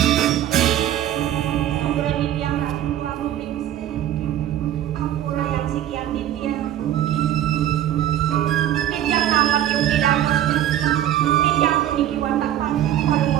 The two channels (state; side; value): quieter; left; 11.8 dB